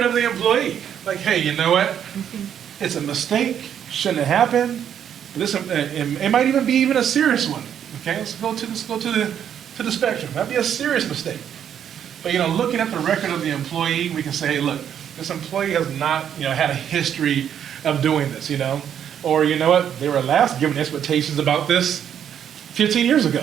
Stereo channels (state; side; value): quieter; left; 9.1 dB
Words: of the employee. Like, hey, you know what? It's a mistake, shouldn't have happened. It might even be a serious one. Okay, let's go to the spectrum. That'd be a serious mistake. But looking at the record of the employee, we can say, hey, look, this employee has not, had a history of doing this, Or you know what, they were last given expectations about this 15 years ago.